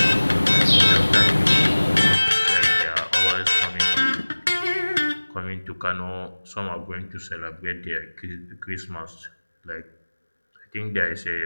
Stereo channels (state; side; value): inverted; both; correlation -1.00